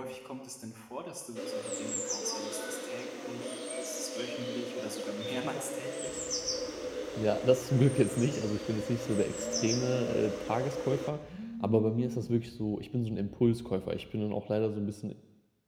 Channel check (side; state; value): both; identical; correlation 1.00